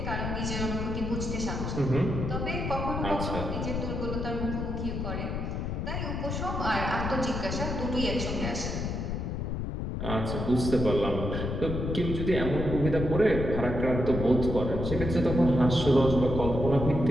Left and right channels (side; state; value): left; noise; rumble, 3 dB below the sound